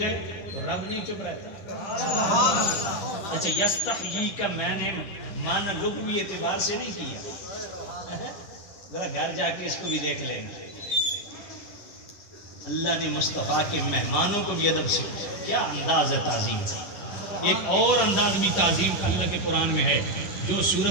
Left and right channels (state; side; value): late; right; 10 ms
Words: ہے تو رب نہیں چپ رہتا. اچھا یستحیی کا میں نے معنی لغوی اعتبار سے نہیں کیا, ذرا گھر جا کے اس کو بھی دیکھ لیں گے. اللہ نے مصطفیٰ کے مہمانوں کو بھی ادب سے کیا انداز ہے تعظیم کا. ایک اور انداز بھی تعظیم کا اللہ کے قرآن میں ہے جو